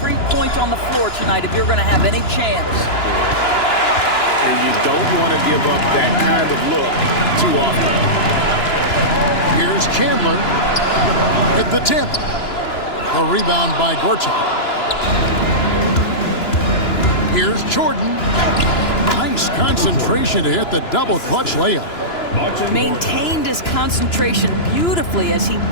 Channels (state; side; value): late; right; 2.9 ms